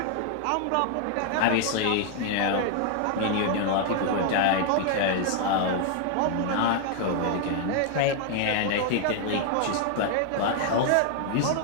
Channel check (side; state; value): both; different; correlation 0.00